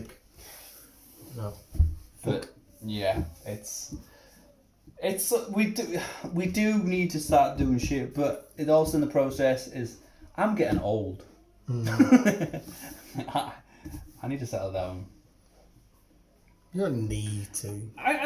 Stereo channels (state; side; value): identical; both; correlation 1.00